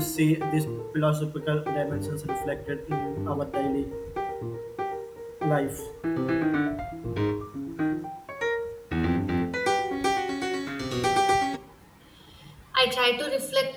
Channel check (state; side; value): identical; both; correlation 1.00